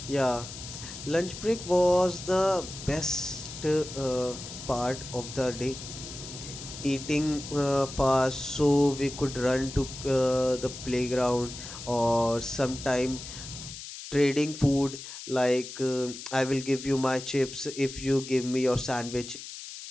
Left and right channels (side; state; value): left; noise; hiss, 11 dB below the sound